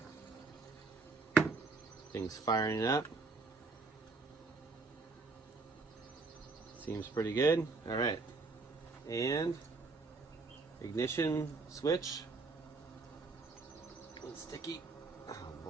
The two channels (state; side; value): quieter; left; 3.9 dB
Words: Things firing up. Seems pretty good. All right. And ignition switch. A little sticky. Oh